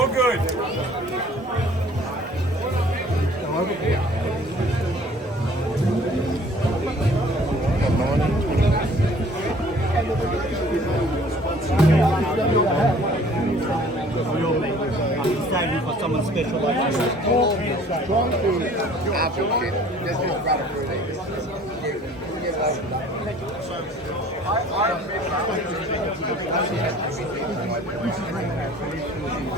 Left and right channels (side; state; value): both; normal; correlation 0.53